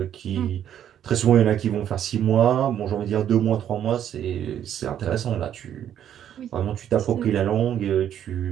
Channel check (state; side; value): quieter; left; 10.1 dB